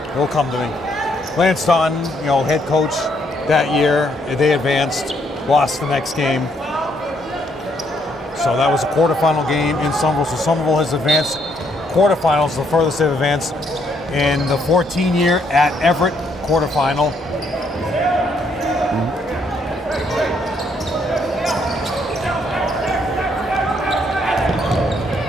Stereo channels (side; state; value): both; normal; correlation 0.71